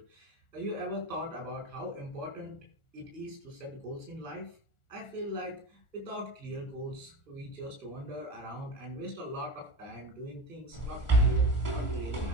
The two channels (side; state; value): right; late; 1.4 ms